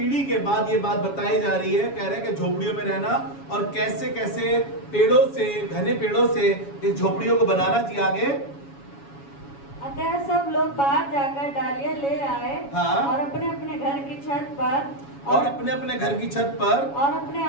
के बाद ये बात बताई जा रही है, कह रहे हैं कि झोपड़ियों में रहना और कैसे कैसे पेड़ों से, घने पेड़ों से इस झोपड़ियों को बनाना चाहिए। आगे, अतः सब लोग बाहर जाकर डालियां ले आए और अपने अपने घर की छत पर और अपने अपने घर की छत पर और अपने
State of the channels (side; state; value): right; late; 7.2 ms